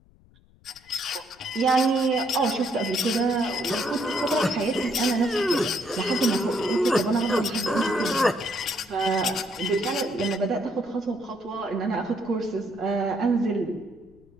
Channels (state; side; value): noise; left; rumble, 29 dB below the sound